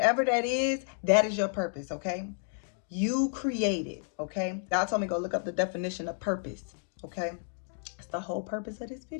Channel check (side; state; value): right; silent; 57 dB below the other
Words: that is your purpose. Okay. You create it. Okay. God told me go look up the definition of purpose. Okay. It's the whole purpose of this